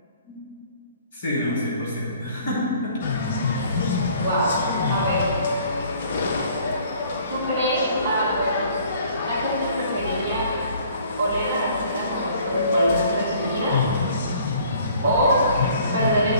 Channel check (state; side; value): inverted; both; correlation -0.56